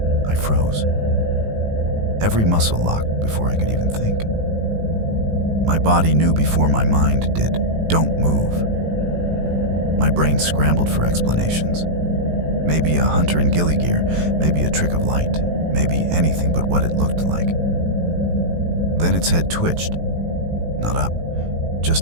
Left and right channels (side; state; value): left; late; 18 ms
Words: I froze. Every muscle locked before I could even think. My body knew before my mind did, don't move. My brain scrambled for explanations. Maybe a hunter in ghillie gear, maybe a trick of light, maybe anything but what it looked like. Then its head twitched. Not up,